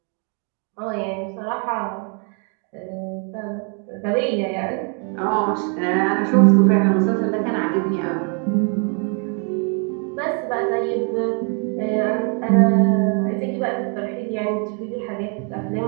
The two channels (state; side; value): quieter; left; 38.3 dB